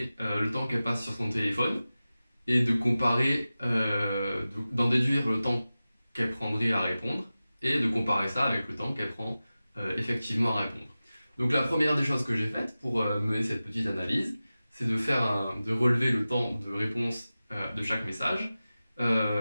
le temps qu'elle passe sur son téléphone et de comparer, d'en déduire le temps qu'elle prendrait à répondre et de comparer ça avec le temps qu'elle prend effectivement à répondre. Donc la première des choses que j'ai faites pour mener cette petite analyse, c'est de relever le temps de réponse de chaque message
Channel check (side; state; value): both; inverted; correlation -0.96